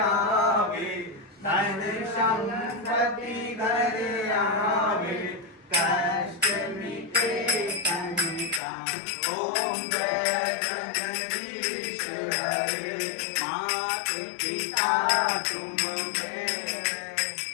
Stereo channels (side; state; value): right; drops out; at 8.6 s